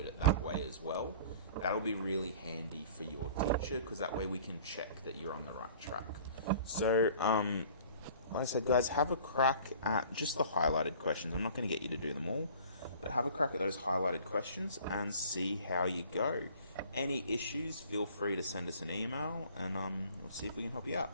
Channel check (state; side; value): inverted; both; correlation -0.49